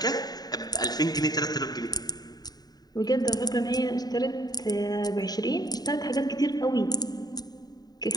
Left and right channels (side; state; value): right; late; 0.19 ms